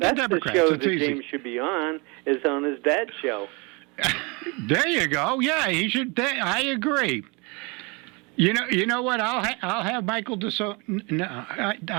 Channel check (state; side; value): quieter; left; 29.1 dB